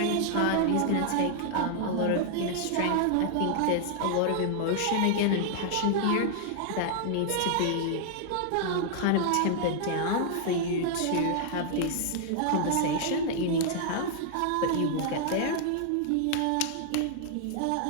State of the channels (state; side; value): different; both; correlation -0.01